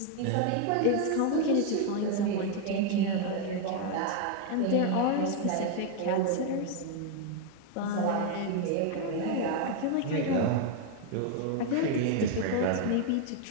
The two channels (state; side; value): different; both; correlation 0.01